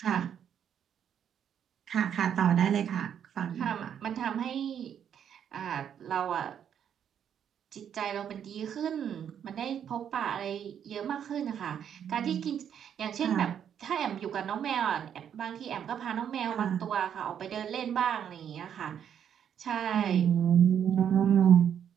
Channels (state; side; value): quieter; left; 8.8 dB